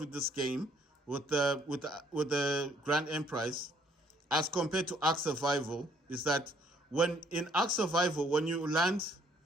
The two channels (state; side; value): normal; both; correlation 0.64